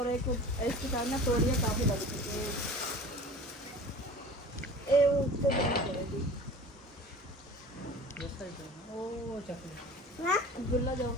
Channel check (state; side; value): normal; both; correlation 0.40